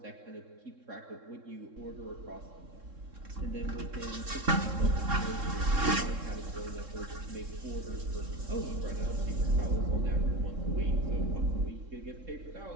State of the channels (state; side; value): late; left; 3.7 ms